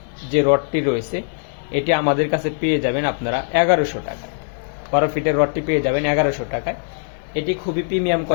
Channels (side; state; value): right; silent; digital silence